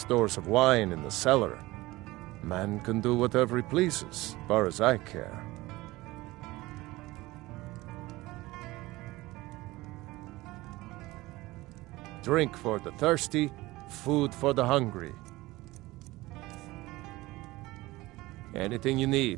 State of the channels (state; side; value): quieter; left; 19.6 dB